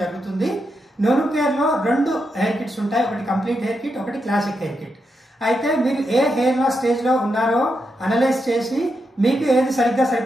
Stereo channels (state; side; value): normal; both; correlation 0.84